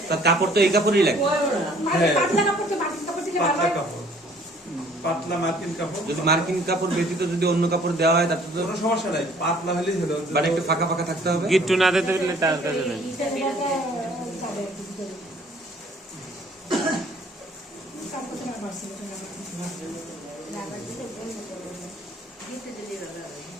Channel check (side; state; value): both; normal; correlation 0.56